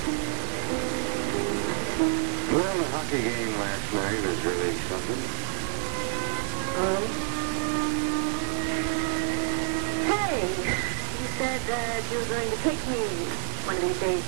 that you were going to take me one of these days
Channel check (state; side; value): silent; left; digital silence